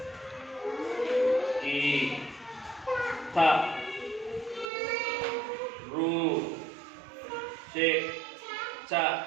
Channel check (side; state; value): left; drops out; at 4.7 s